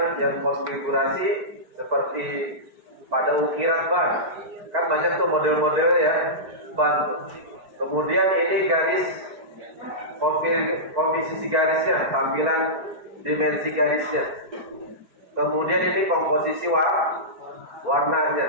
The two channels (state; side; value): late; left; 4.6 ms